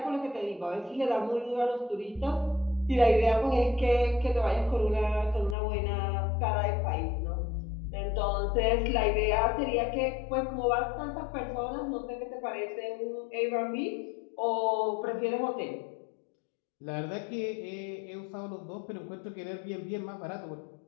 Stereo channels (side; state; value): right; drops out; at 5.6 s